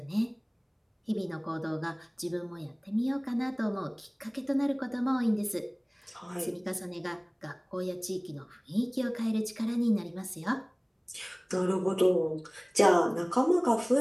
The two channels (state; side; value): identical; both; correlation 1.00